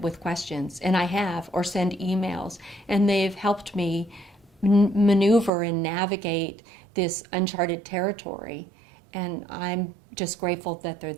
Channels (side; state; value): left; drops out; at 5.5 s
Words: with questions, and I have, or send emails, and they've helped me maneuver and navigate this uncharted territory, and I'm just grateful that they're